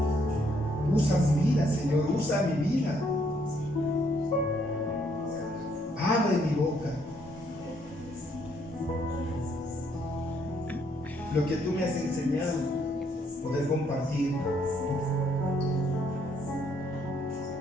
Usa mi vida, Señor, usa mi vida. Abre mi boca. Lo que tú me has enseñado, poder compartir.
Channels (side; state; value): both; normal; correlation 0.70